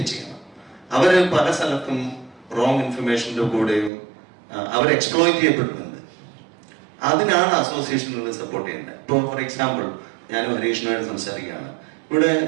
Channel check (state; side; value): drops out; left; at 3.9 s